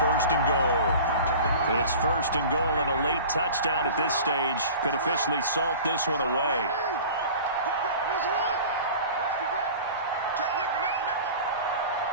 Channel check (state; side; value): inverted; both; correlation -0.40